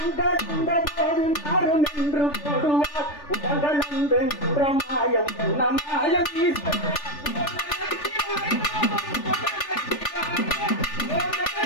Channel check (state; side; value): late; right; 3.4 ms